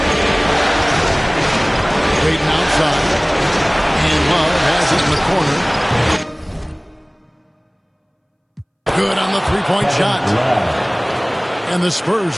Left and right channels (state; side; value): identical; both; correlation 1.00